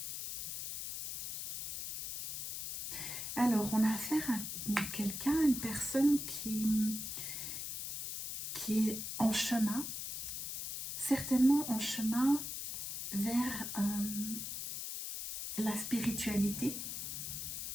Alors, on a affaire à quelqu'un, une personne qui est en chemin, certainement en chemin vers la spiritualité.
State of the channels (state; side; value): noise; left; hiss, 5 dB below the sound